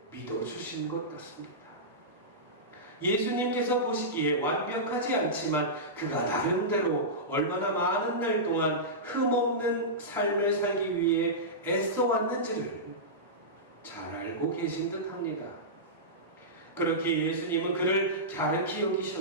믿어주신 것 같습니다. 예수님께서 보시기에 완벽하지 않지만 그가 나름대로 얼마나 많은 날 동안 흠없는 삶을 살기 위해 애써왔는지를 잘 알고 계신 듯 합니다. 그렇게 예수님은 그를 갸륵히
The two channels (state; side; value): normal; both; correlation -0.15